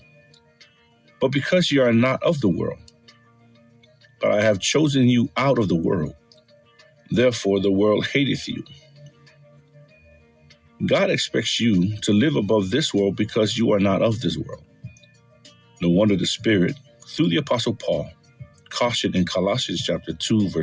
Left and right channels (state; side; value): identical; both; correlation 1.00